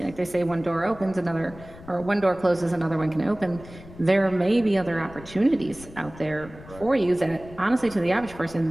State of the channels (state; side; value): noise; left; rumble, 18 dB below the sound